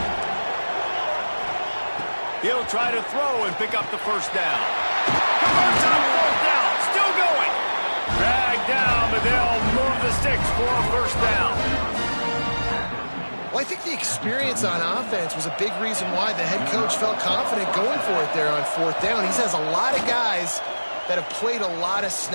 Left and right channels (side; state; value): both; inverted; correlation -1.00